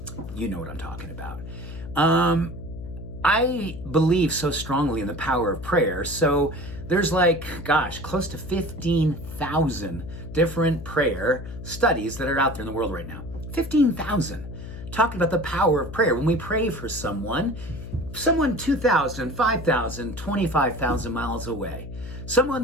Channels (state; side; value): noise; left; hum, 10 dB below the sound